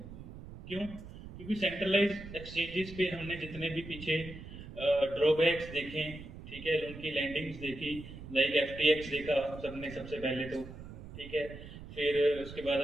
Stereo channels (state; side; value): noise; right; rumble, 13 dB below the sound